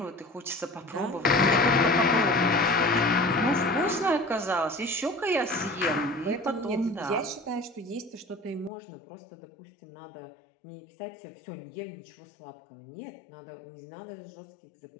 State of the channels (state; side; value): drops out; right; at 8.7 s